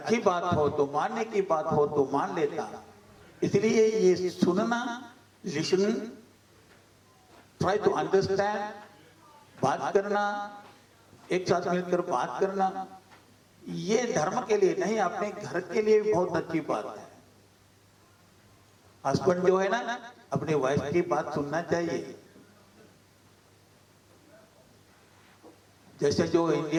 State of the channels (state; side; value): identical; both; correlation 1.00